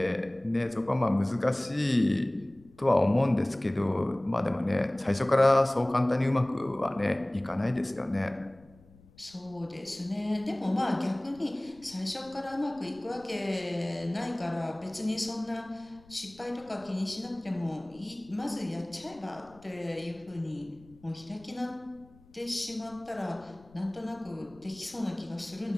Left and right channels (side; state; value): left; noise; rumble, 26 dB below the sound